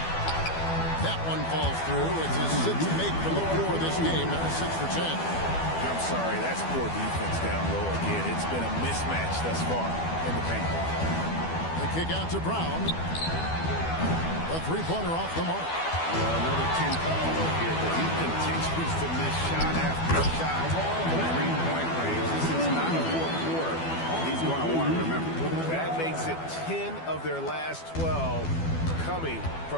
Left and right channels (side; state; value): right; late; 12 ms